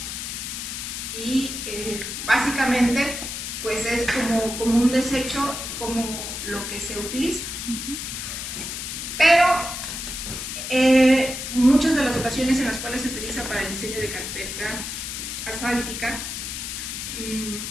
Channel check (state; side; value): noise; left; hiss, 6 dB below the sound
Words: y básicamente pues es como un desecho, como lo que se utiliza. Pero muchas de las ocasiones en las cuales se utiliza para el diseño de carpeta asfáltica